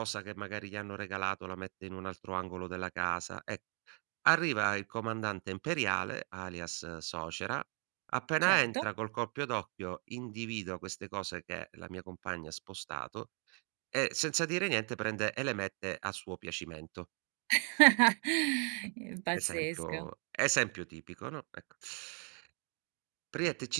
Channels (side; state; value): left; quieter; 38.3 dB